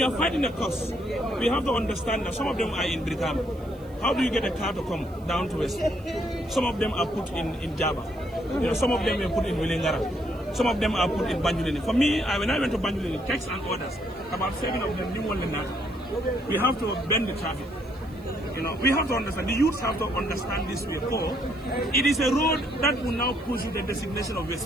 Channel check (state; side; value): noise; right; hiss, 28 dB below the sound